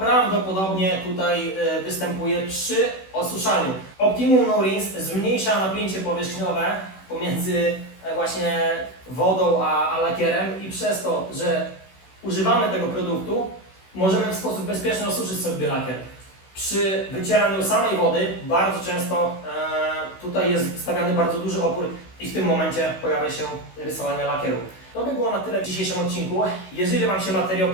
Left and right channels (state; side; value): late; right; 16 ms